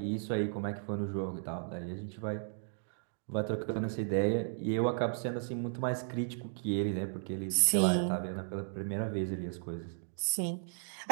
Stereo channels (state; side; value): silent; left; digital silence